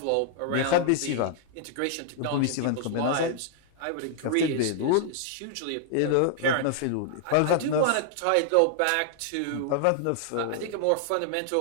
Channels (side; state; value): both; different; correlation 0.00